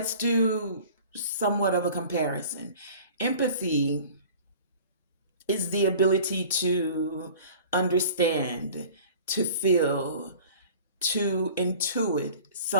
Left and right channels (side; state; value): both; inverted; correlation -0.44